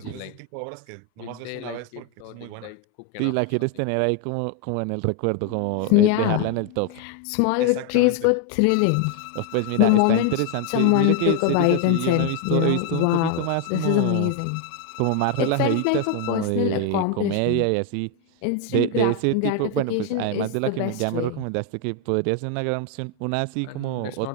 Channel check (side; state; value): both; different; correlation 0.01